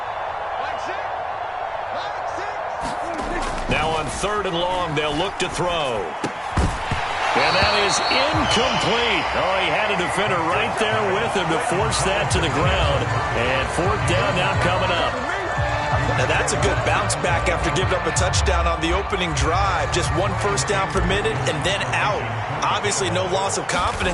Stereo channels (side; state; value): both; identical; correlation 1.00